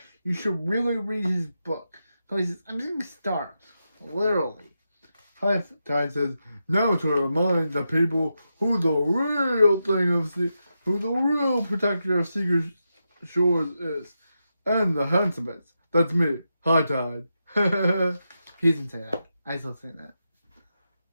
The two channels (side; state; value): both; inverted; correlation -0.87